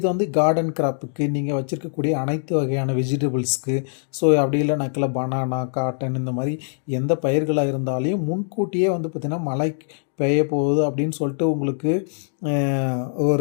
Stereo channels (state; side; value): silent; right; 64 dB below the other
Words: வந்து கார்டன் கிராப்புக்கு நீங்கள் வச்சுருக்கக்கூடிய அனைத்து வகையான வெஜிடபிள்ஸ்க்கு, ஸோ அப்படி இல்லைனாக்கில் பனானா, காட்டன் இந்த மாதிரி எந்த பயிர்களாக இருந்தாலையும் முன்கூட்டியே வந்து பார்த்திங்கன்னா மழை பெய்ய போகுது அப்படின்னு சொல்லிட்டு உங்களுக்கு